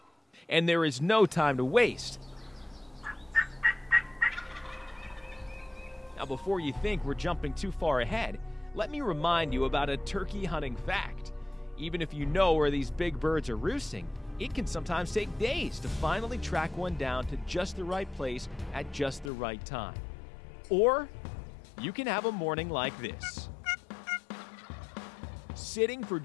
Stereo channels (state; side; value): drops out; right; at 19.3 s